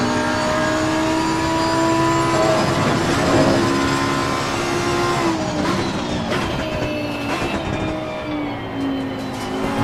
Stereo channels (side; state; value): both; identical; correlation 1.00